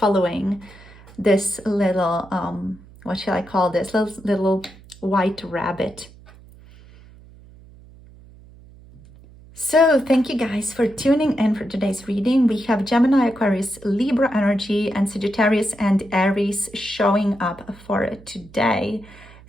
this little what shall I call this, little white rabbit. So thank you guys for tuning in for today's reading. We have Gemini, Aquarius, Libra energy, and Sagittarius and Aries showing up for today.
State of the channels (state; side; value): noise; right; hum, 22 dB below the sound